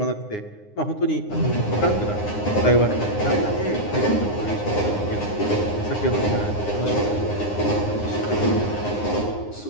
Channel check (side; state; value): right; late; 9.7 ms